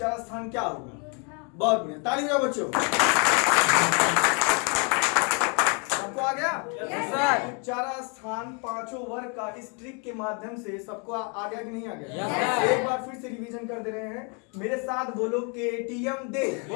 स्थान क्या होगा? बहुत बढ़िया, ताली बजाओ बच्चों। सबको आ गया? उच्चारण स्थान 5 वर्ग का इस ट्रिक के माध्यम से सबको आ गया कि नहीं आ गया? एक बार फिर से रिवीजन कर दे रहे हैं, मेरे साथ बोलो केटीएम दे,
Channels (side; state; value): right; quieter; 35.9 dB